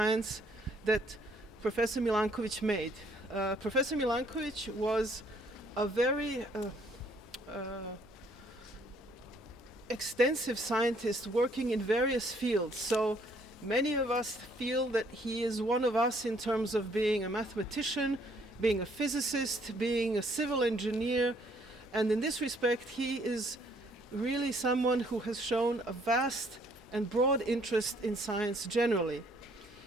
that Professor Milánković made. Professor Milánković was a very extensive scientist working in various fields. So many of us feel that he is one of us in terms of being a mathematician, being a physicist, being a civil engineer. And in this respect, he is really someone who has shown a vast and broad interest in science generally.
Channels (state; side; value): normal; both; correlation 0.64